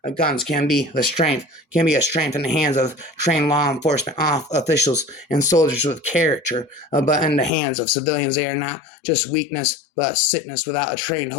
Guns can be a strength in the hands of trained law enforcement officials and soldiers with character, but in the hands of civilians they are not just weakness but sickness. Without a trained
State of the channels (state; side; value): drops out; right; at 7.5 s